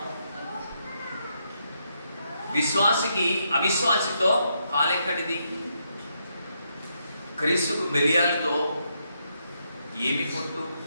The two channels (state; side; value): inverted; both; correlation -0.79